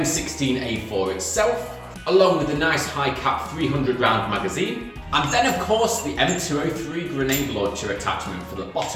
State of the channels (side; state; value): both; identical; correlation 1.00